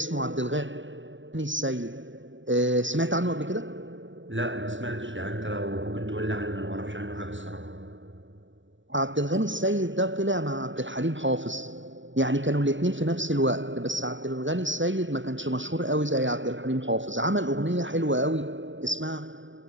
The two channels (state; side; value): late; left; 0.56 ms